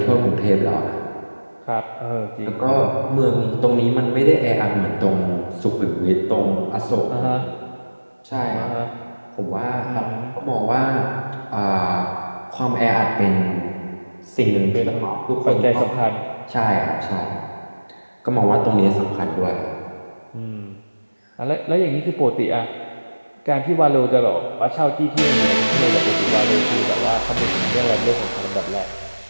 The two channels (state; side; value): inverted; both; correlation -1.00